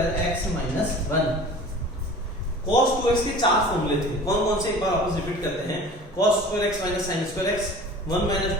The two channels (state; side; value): normal; both; correlation 0.42